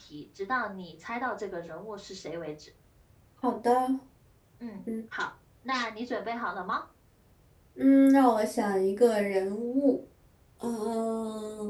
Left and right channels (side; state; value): both; identical; correlation 1.00